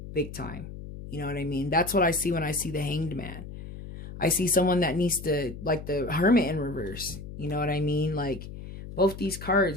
Big time. You know what I mean? That's what I see when I see the Hanged Man. I see someone that needs to, like the Hermit in reverse. You know what I mean? Like both these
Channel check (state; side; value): noise; left; hum, 11 dB below the sound